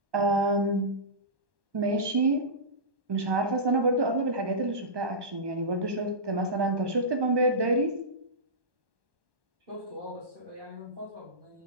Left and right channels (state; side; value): late; left; 1.2 ms